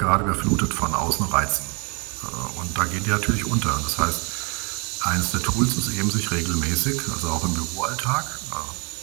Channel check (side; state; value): left; quieter; 32.4 dB